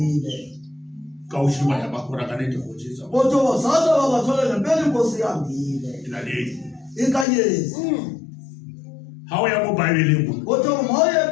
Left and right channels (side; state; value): right; drops out; at 7.2 s